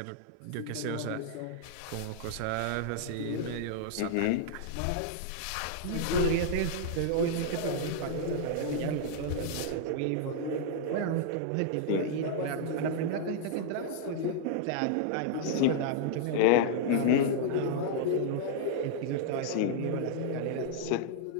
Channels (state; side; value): different; both; correlation -0.01